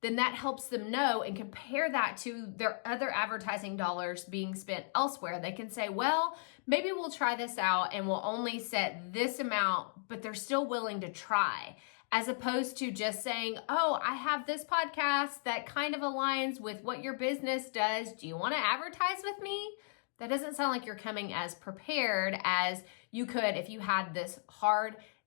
then that helps them know and compare that to their other advertising dollars being spent elsewhere. They can say, well, maybe we'll try this out and we'll only set this amount, but they're still willing to try. As opposed to just saying, oh, I have this podcast that kind of aligns with what your business does. Do you want to advertise with me? That doesn't sound like you're coming as prepared as you could if you had this hard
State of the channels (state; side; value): silent; right; digital silence